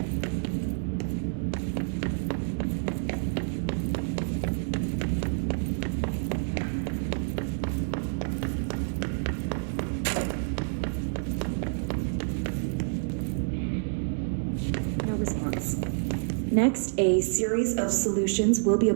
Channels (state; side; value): silent; left; digital silence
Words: No response. Next, a series of solutions will be